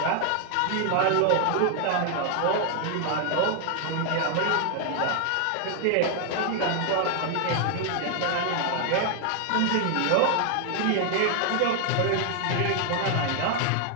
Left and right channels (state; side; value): different; both; correlation 0.00